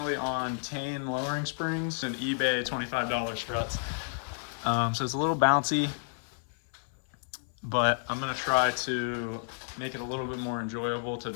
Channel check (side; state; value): right; silent; 57 dB below the other